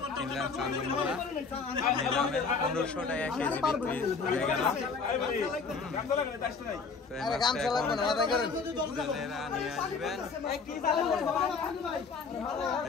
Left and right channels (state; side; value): quieter; right; 4.9 dB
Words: কিনলাম চান্দমোলা, নিলামে 1500 টাকা কেজি বিক্রি হয়ে গেল। জেলেরা নিয়ে আসবেন।